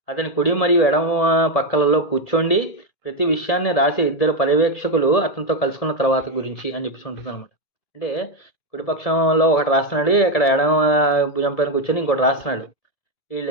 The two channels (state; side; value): late; right; 1.7 ms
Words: అతని కుడి మరియు ఎడమ పక్కలలో కూర్చోండి ప్రతి విషయాన్ని రాసే ఇద్దరు పర్యవేక్షకులు అతనితో కలుసుకున్న తర్వాత గురించి అని చెప్పేసి ఉంటుంది అనమాట. అంటే కుడిపక్షంలో ఒకటి రాస్తున్నాడు, ఇక్కడ ఎడమ భుజం పైన కూర్చొని ఇంకోటి రాస్తున్నాడు.